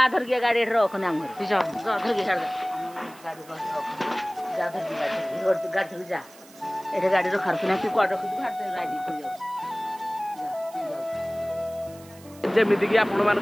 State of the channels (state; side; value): noise; right; hiss, 22 dB below the sound